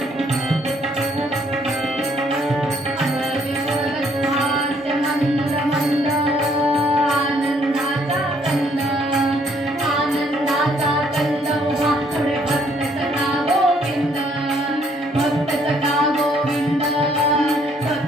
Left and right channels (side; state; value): both; normal; correlation 0.66